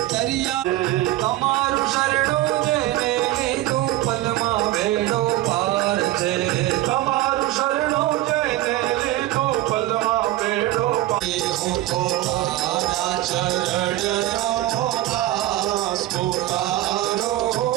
दरिया तमारु शरणो जेने लीधु पलमा भेड़ो पार छे तमारु शरणो जेने लीधु पलमा भेड़ो पार चरणो दास पुकारो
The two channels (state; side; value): quieter; left; 15.5 dB